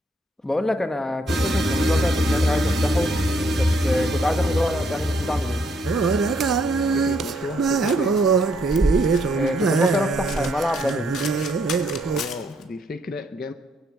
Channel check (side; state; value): both; normal; correlation 0.71